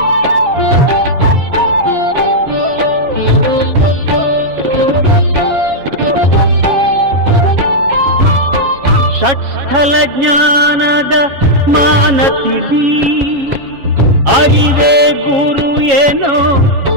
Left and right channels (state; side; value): late; left; 7.3 ms